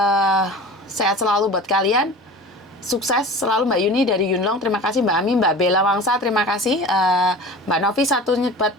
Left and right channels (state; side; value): normal; both; correlation 0.37